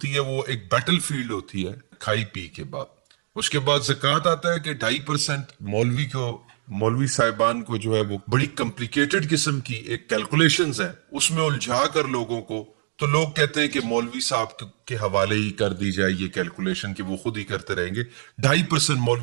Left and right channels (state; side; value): silent; left; digital silence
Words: ہے وہ ایک بیٹل فیلڈ ہوتی ہے کھائی پی کے بعد۔ اس کے بعد زکوٰۃ آتا ہے کہ 2.5% مولوی صاحبان کو جو ہے وہ بڑی کمپلیکیٹڈ قسم کی ایک کیلکولیشنز ہے، اس میں الجھا کر لوگوں کو، تو لوگ کہتے ہیں کہ مولوی صاحب کے حوالے ہی کر دی جائے یہ کیلکولیشن کہ وہ خود ہی کرتے رہیں گے۔ 2.5%